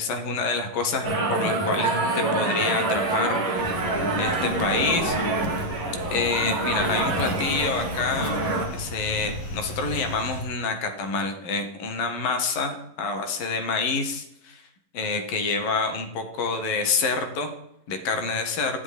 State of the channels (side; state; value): right; late; 11 ms